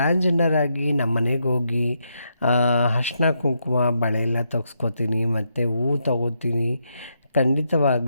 ಆಗಿ ನಮ್ಮ ಮನೆಗೆ ಹೋಗಿ ಅರಿಶಿನ ಕುಂಕುಮ ಬಳೆ ಎಲ್ಲ ತೆಗ್ಸ್ಕೊತೀನಿ ಮತ್ತು ಹೂವು ತಗೋತೀನಿ.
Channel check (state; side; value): inverted; both; correlation -0.80